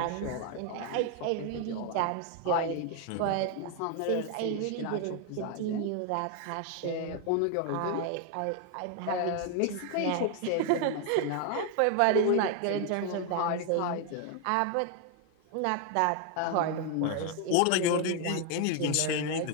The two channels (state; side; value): different; both; correlation 0.01